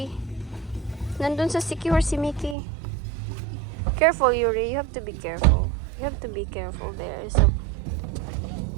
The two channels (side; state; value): left; drops out; at 2.6 s